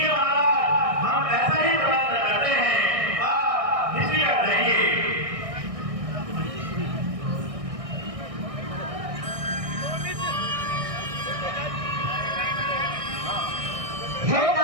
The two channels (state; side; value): late; left; 1.6 ms